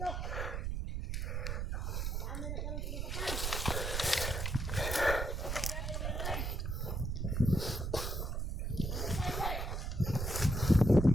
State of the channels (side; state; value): right; noise; rumble, 1 dB below the sound